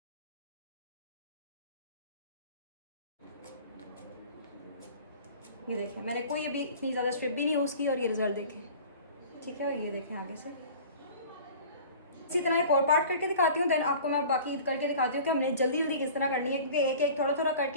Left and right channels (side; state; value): both; inverted; correlation -0.42